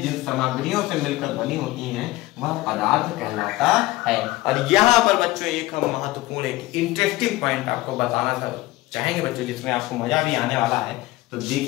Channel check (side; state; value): right; quieter; 18.6 dB